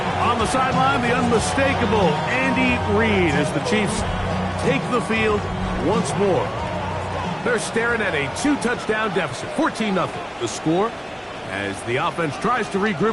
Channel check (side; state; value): both; identical; correlation 1.00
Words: On the sideline, the unmistakable Andy Reid as the Chiefs take the field once more. They're staring at a 2-touchdown deficit, 14-0. The score as the offense tries to